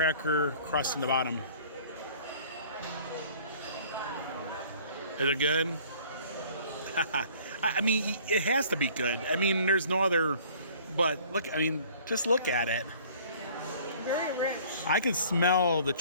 crust in the bottom. Is it good? I mean, it has to be good. I mean, there's no other... But look, I mean, just look at it. Very rich. I can smell the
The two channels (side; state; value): both; inverted; correlation -0.52